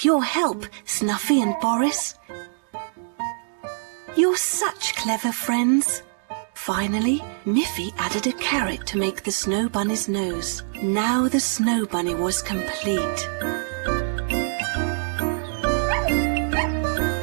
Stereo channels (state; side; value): silent; left; digital silence